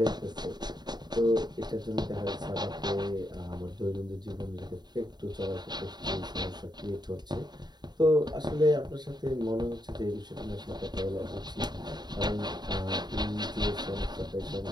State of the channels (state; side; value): late; left; 0.20 ms